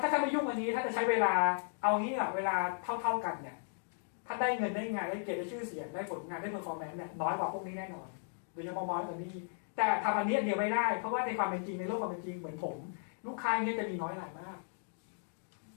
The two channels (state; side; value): silent; right; digital silence